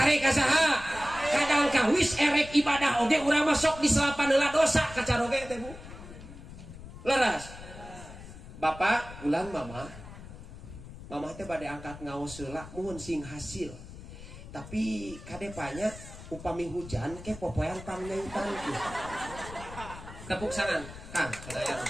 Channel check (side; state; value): left; noise; rumble, 14 dB below the sound